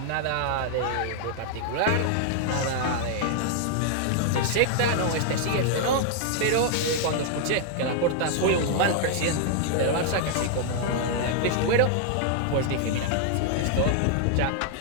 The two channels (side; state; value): both; different; correlation -0.01